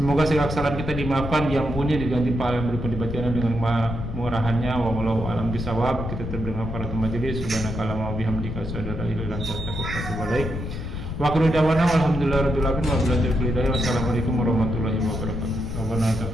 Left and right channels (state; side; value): noise; left; rumble, 6 dB below the sound